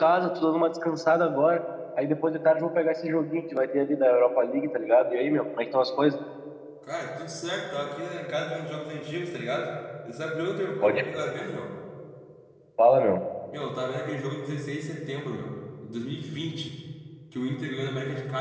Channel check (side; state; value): both; identical; correlation 1.00